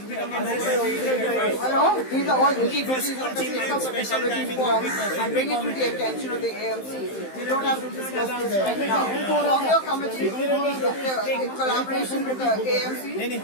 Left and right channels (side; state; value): right; late; 15 ms